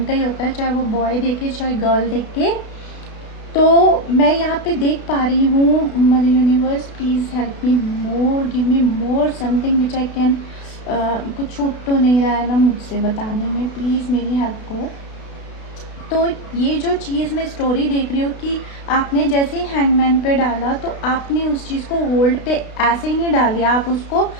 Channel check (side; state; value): right; late; 32 ms